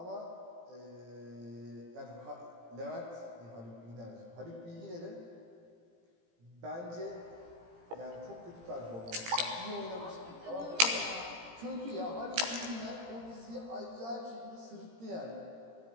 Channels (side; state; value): left; late; 17 ms